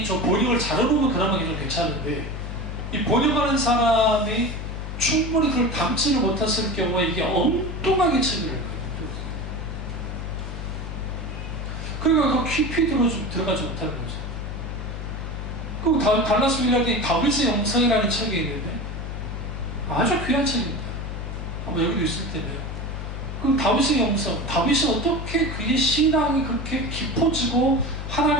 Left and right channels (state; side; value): noise; left; hum, 6 dB below the sound